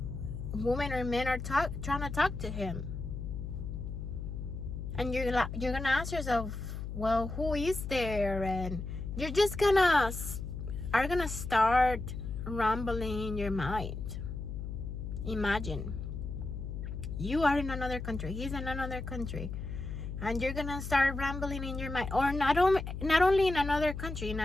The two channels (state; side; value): noise; left; hum, 6 dB below the sound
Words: women or men are trying to talk to him. And you're gonna ask yourself, well, who is there? And you're just gonna start rambling in your mind. Imagine you are in another country, he's in another country, and you're gonna start rambling in your mind. Or not only in another country, in